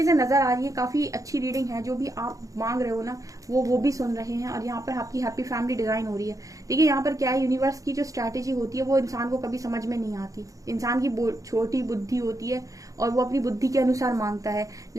नजर आ रही है, काफी अच्छी रीडिंग है। जो भी आप मांग रहे हो ना, वो भी सुन रहे हैं। और यहाँ पर आपकी हैप्पी फैमिली डिजाइन हो रही है। देखिए यहाँ पर क्या है, यूनिवर्स की जो स्ट्रैटेजी होती है वो इंसान को कभी समझ में नहीं आती। इंसान की छोटी बुद्धि होती है और वो अपनी बुद्धि के अनुसार मांगता है।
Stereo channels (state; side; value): late; left; 0.16 ms